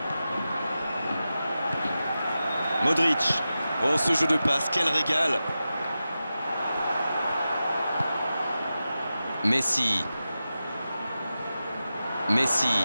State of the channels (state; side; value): inverted; both; correlation -0.93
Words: Modric. Oh, ce jeu de passe, quel régal! Messi. Messi